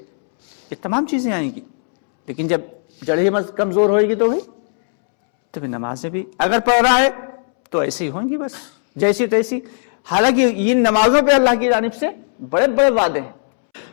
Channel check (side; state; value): right; silent; 68 dB below the other